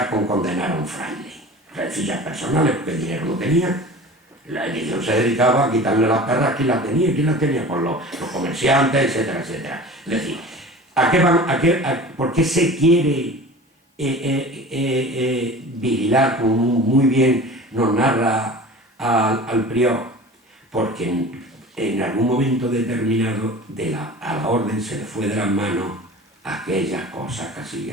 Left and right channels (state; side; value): normal; both; correlation 0.39